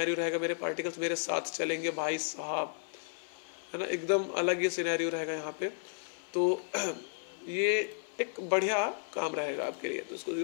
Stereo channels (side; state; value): right; silent; 55 dB below the other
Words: रहेगा। मेरे पार्टिकल्स मेरे साथ चलेंगे भाई साहब, है ना, एकदम अलग ही सिनेरियो रहेगा यहाँ पे। तो ये एक बढ़िया काम रहेगा आपके लिए। तो इसको